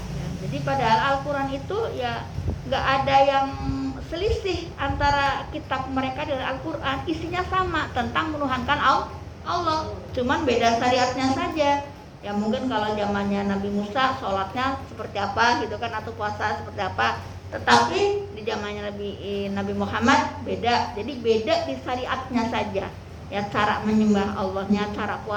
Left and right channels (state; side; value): identical; both; correlation 1.00